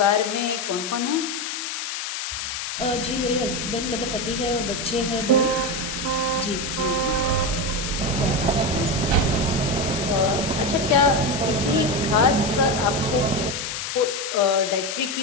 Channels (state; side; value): noise; left; hiss, 5 dB below the sound